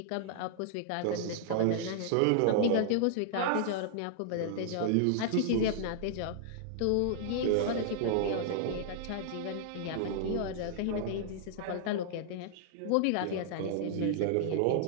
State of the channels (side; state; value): both; different; correlation -0.01